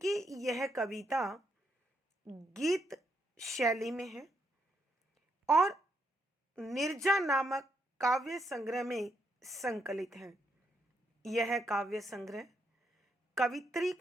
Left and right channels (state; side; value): normal; both; correlation 0.77